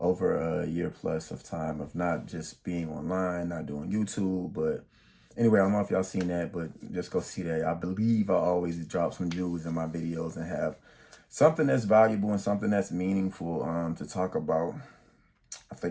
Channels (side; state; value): both; identical; correlation 1.00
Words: a year plus of time of not just being online, not doing YouTube, but anyway, I don't know if y'all seen that, but just go see that. I believe I always drop some jewels in my videos and have something that's valuable and something that's meaningful to talk about. I